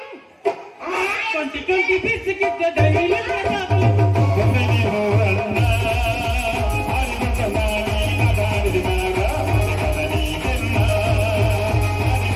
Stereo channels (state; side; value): identical; both; correlation 1.00